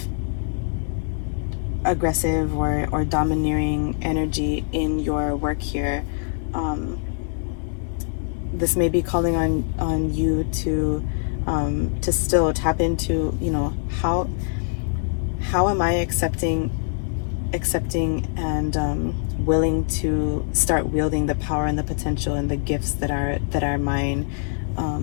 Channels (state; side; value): silent; right; 59 dB below the other